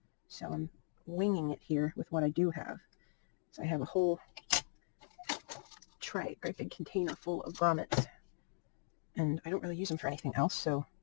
so I'm winging it here with what I do have. So I have a whole tray, great big container full of grommets, and I don't really use them for anything else, so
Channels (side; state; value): right; silent; digital silence